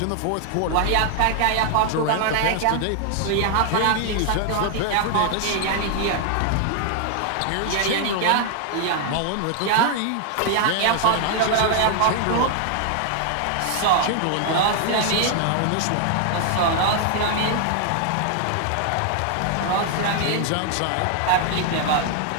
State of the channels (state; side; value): different; both; correlation 0.00